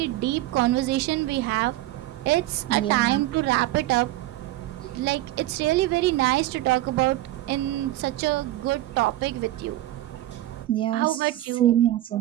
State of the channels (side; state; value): left; quieter; 15.7 dB